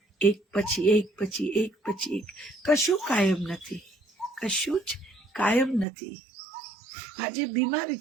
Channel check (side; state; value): left; drops out; at 5.9 s